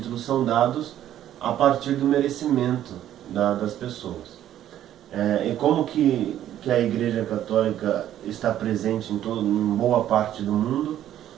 são dados a partir do merecimento das pessoas. E como que a Igreja Católica está presente em boa parte do mundo,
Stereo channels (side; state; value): left; quieter; 11.7 dB